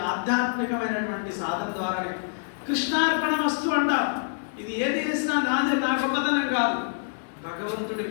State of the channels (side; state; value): right; silent; digital silence